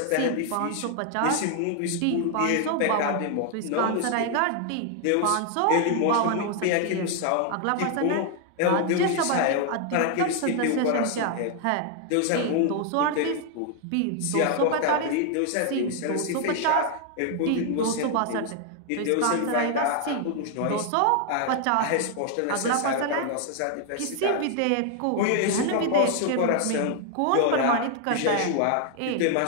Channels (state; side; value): different; both; correlation 0.00